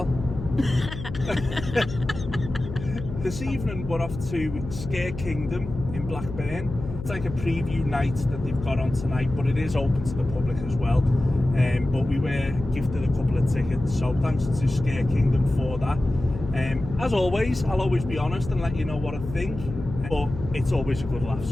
This evening we're off to Scarekingdom in Blackburn. It's like a preview night that they've got on tonight, but it is open to the public as well. But we were gifted a couple of tickets, so thanks to Scarekingdom for that. As always, I'll always be honest and let you know what I think, but it's always a good laugh,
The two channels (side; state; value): left; noise; hum, 9 dB below the sound